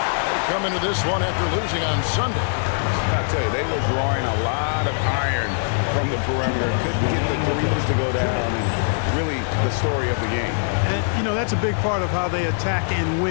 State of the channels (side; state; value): right; silent; digital silence